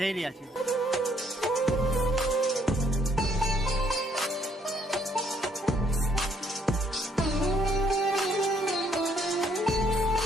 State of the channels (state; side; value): normal; both; correlation 0.67